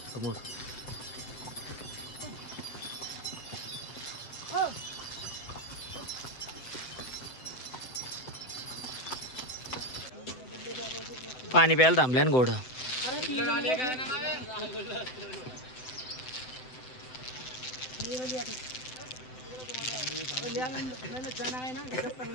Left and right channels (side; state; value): right; late; 7.9 ms